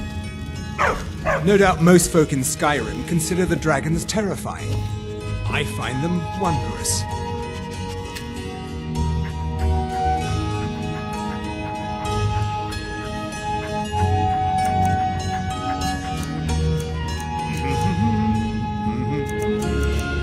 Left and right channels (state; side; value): identical; both; correlation 1.00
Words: No doubt most folk in Skyrim consider the dragons terrifying. I find them wondrous.